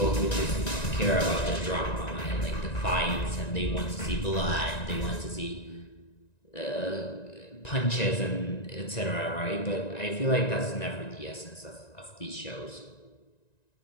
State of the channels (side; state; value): right; late; 1.9 ms